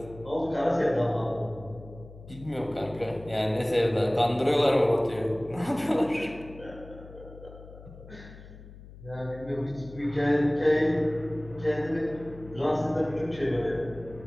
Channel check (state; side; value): noise; left; hum, 17 dB below the sound